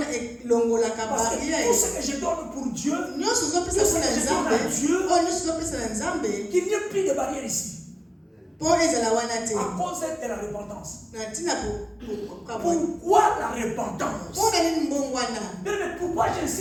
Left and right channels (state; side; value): identical; both; correlation 1.00